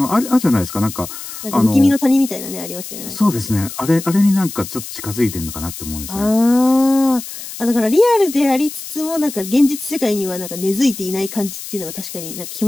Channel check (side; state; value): left; noise; hiss, 11 dB below the sound